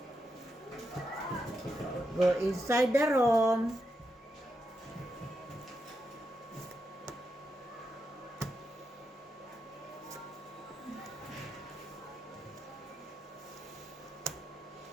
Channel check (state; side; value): normal; both; correlation 0.85